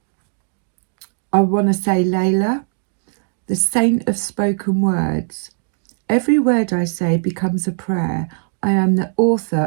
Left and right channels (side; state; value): left; silent; digital silence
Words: I want to say Layla, the saint of spoken words. Every word I say becomes a prayer. I am the